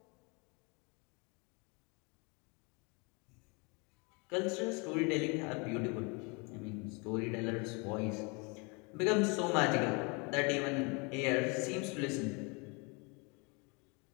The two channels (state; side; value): quieter; right; 30.6 dB